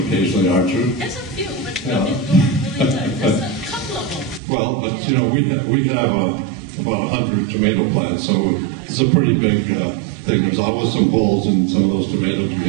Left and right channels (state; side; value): drops out; left; at 4.4 s